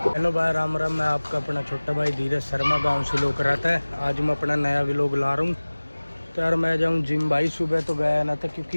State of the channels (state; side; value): inverted; both; correlation -1.00